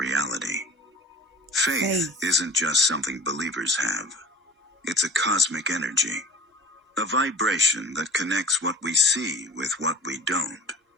Faith isn't just something believers have. It's a cosmic energy, a vibration that connects what we see with what we don't.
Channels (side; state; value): both; normal; correlation 0.40